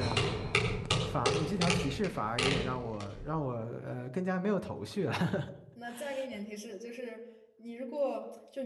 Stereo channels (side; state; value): both; identical; correlation 1.00